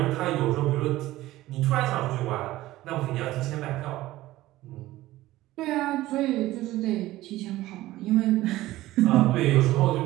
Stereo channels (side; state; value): left; quieter; 16.5 dB